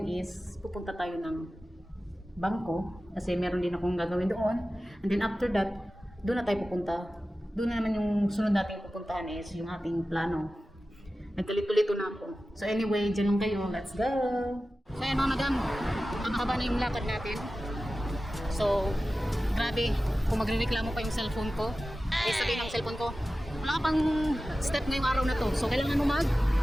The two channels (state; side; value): normal; both; correlation 0.95